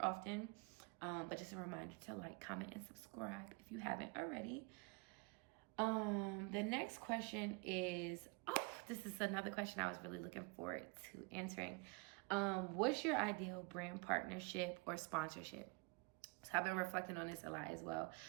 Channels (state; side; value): quieter; left; 29.9 dB